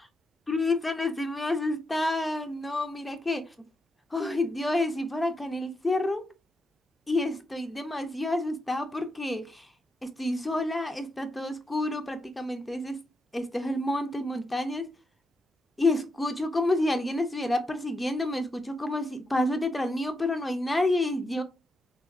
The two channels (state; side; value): normal; both; correlation 0.83